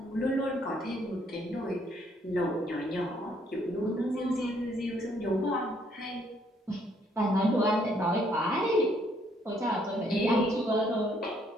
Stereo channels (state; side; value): normal; both; correlation 0.68